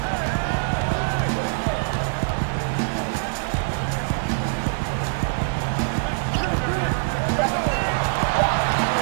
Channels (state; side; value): silent; left; digital silence